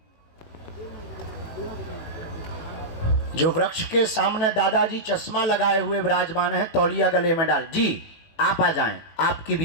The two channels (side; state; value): right; late; 19 ms